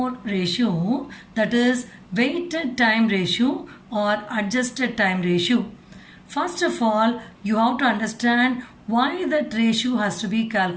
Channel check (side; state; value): both; identical; correlation 1.00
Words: ratio, that is weighted time ratio or adjusted time ratio. First of all, you have to understand why that ratio has to be